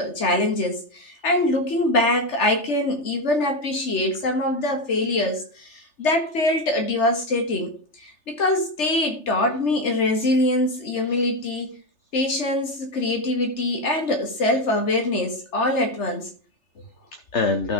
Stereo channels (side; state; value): right; late; 3.3 ms